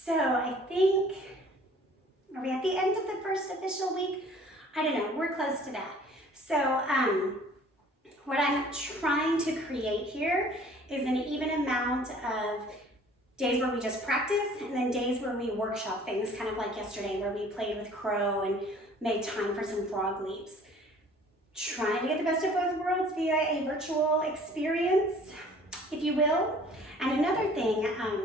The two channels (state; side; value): normal; both; correlation 0.52